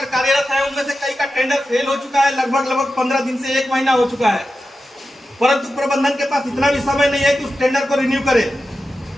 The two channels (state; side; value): normal; both; correlation 0.92